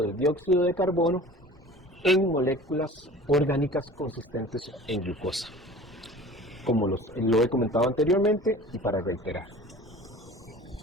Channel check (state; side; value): normal; both; correlation 0.42